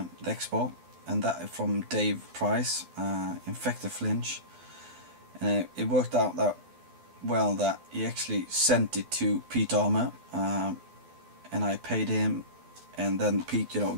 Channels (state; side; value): late; left; 12 ms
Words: Expo, and that from Dave Price, Infected Flinch. And it worked out that well that he actually sent it to Pete Armour, and I paid him, and then Pete